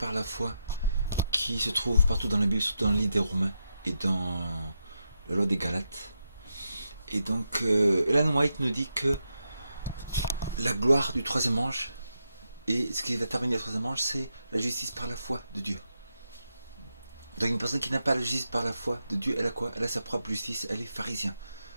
la foi qui se trouve partout dans la Bible, surtout dans le livre des Romains et dans la loi des Galates. Et donc, Ellen White nous dit que la gloire du troisième ange et ce qui va terminer le troisième ange, c'est la justice par la foi de Dieu. Donc, une personne qui n'a pas la justice par la foi de Dieu, elle a quoi? Elle a sa propre justice, elle est pharisien.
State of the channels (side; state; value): both; inverted; correlation -0.85